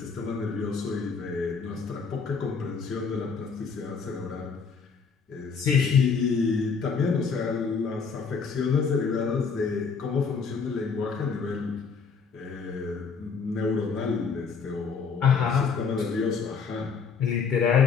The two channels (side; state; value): right; quieter; 5.5 dB